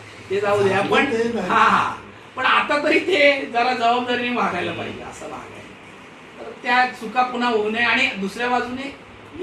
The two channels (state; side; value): identical; both; correlation 1.00